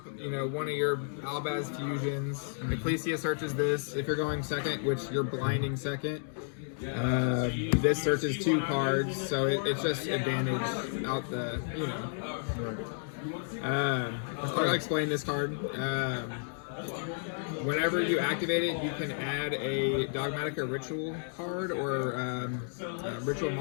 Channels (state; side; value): silent; right; digital silence